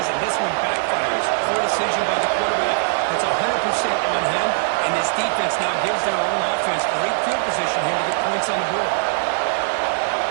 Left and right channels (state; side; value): silent; left; digital silence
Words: and this one backfires. Poor decision by the quarterback. It's 100% on him, and this defense now gives their own offense great field position here to get points on the board.